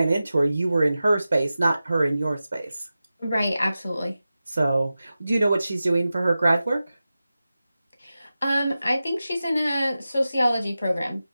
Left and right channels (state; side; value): inverted; both; correlation -0.94